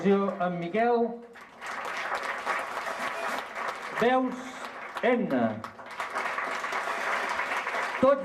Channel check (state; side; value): identical; both; correlation 1.00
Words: en Miquel. Veus, Edna.